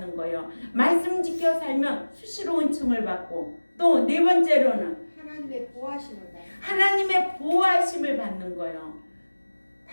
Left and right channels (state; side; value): inverted; both; correlation -1.00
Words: 거예요. 말씀 지켜 살면 수시로 은총을 받고 또 네 번째로는 하나님의 보호하심을 받는 거예요.